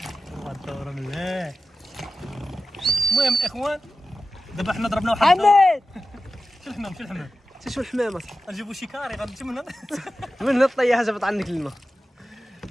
الدوره مليح. المهم الاخوان دابا حنا ضربنا واحد حماد شو الحمام شو الحمامه نجيبو شي كاري غنمشي من هنا من الطيحه جابت عنك الماء.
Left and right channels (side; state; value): both; normal; correlation 0.93